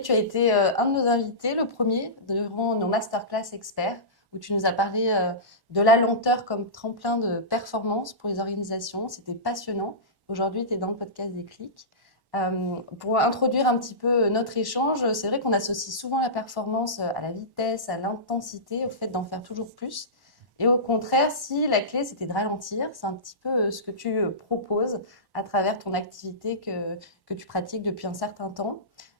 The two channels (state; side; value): late; left; 1.1 ms